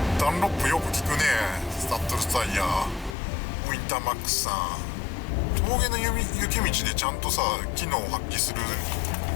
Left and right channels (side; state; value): right; drops out; at 3.2 s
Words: ダンロップよく効くね。スタッドレスタイヤ、ウィンターマックスさん。峠の雪道でちゃんとさ機能を発揮する